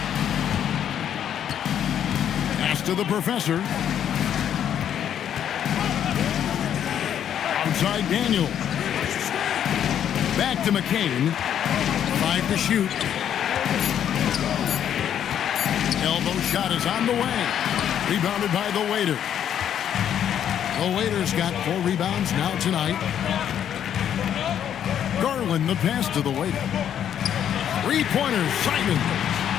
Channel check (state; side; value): quieter; right; 9.6 dB